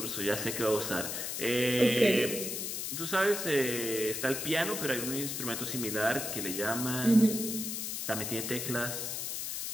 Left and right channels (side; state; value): left; noise; hiss, 4 dB below the sound